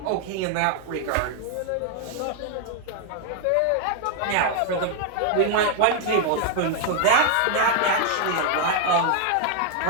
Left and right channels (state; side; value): different; both; correlation 0.00